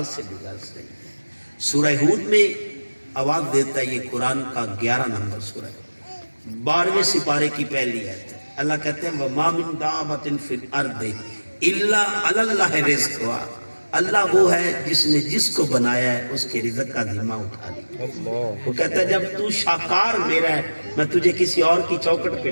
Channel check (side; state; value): both; inverted; correlation -1.00